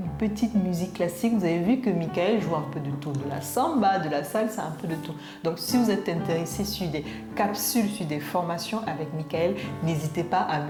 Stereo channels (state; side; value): identical; both; correlation 1.00